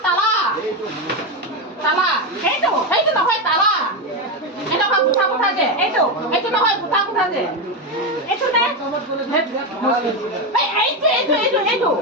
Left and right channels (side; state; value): both; normal; correlation 0.11